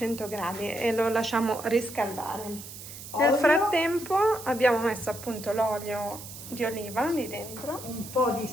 gradi e lo lasciamo riscaldare. Nel Olio. frattempo abbiamo messo appunto l'olio di oliva lì dentro. Un po' di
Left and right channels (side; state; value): right; noise; hiss, 13 dB below the sound